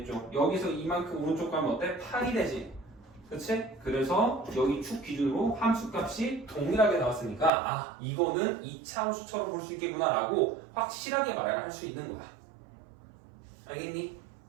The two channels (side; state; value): left; drops out; at 7.5 s